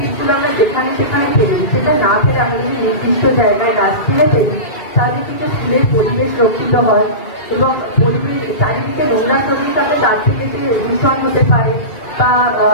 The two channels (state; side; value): late; right; 2.3 ms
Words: আমরা যেখানে সেখানে ফেলে দিই, সেটা না ফেলে আমরা যদি নির্দিষ্ট জায়গায় ডাস্টবিনে ফেলি তাহলে কিন্তু স্কুলের পরিবেশ রক্ষিত হয় এবং পরিবেশ চারিদিকে নোংরা শরীর তাতে তার থেকে যে দূষণ হতে পারে বা